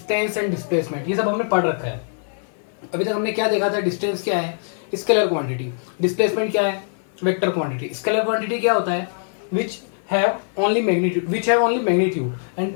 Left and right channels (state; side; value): silent; right; 55 dB below the other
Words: and displacement, ये सब हमने पढ़ रखा है। अभी तक हमने क्या देखा था, डिस्टेंस क्या है, स्केलर क्वांटिटी, डिस्प्लेसमेंट क्या है, वेक्टर क्वांटिटी। स्केलर क्वांटिटी क्या होता है, which have only magnitude and